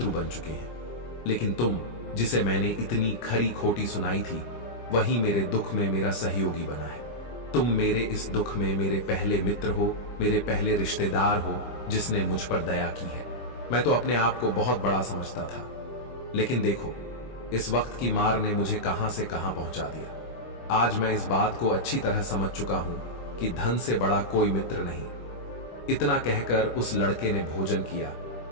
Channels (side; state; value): right; late; 25 ms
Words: बन चुके हैं। लेकिन तुम, जिसे मैंने इतनी खरी खोटी सुनाई थी, वही मेरे दुख में मेरा सहयोगी बना है। तुम मेरे इस दुख में मेरे पहले मित्र हो, मेरे पहले रिश्तेदार हो, जिसने मुझ पर दया की है। मैं तो अपने आप को बहुत बड़ा समझता था, लेकिन देखो, इस वक्त की मार ने मुझे कहां से कहां पहुंचा दिया। आज मैं इस बात को अच्छी तरह समझ चुका हूं कि धन से बड़ा कोई मित्र नहीं। इतना कहकर उस लड़के ने भोजन किया